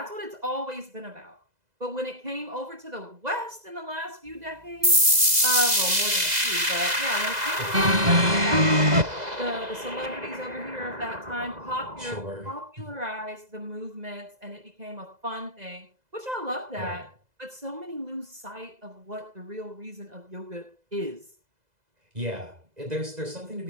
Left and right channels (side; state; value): left; late; 2.0 ms